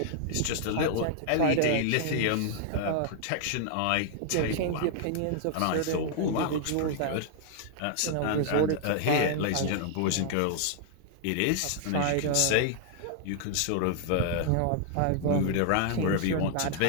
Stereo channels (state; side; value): different; both; correlation -0.01